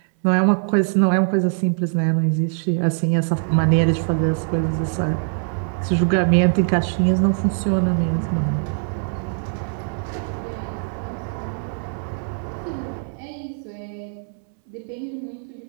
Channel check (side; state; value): left; silent; 63 dB below the other